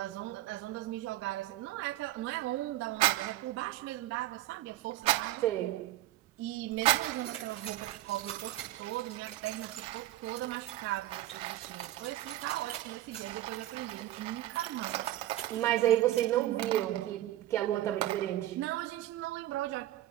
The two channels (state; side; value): quieter; left; 15.0 dB